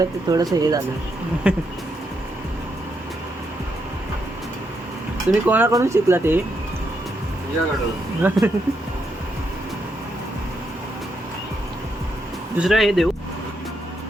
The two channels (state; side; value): normal; both; correlation 0.80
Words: ते थोडंसं हे झालं. तुम्ही कोणाकडून शिकला ते? दुसरं हे देऊ.